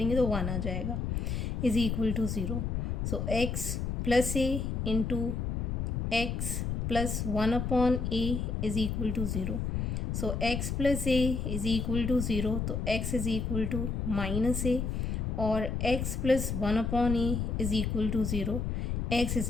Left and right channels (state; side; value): noise; left; rumble, 1 dB below the sound